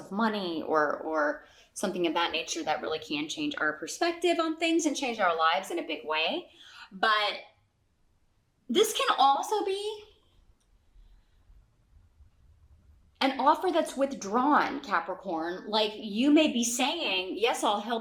money or something of that nature, that really can change our perspective on things and change our lives in a big way. But this can also be an offer that's withdrawn, Capricorn. Like you may be saying, yes, I'll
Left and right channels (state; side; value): identical; both; correlation 1.00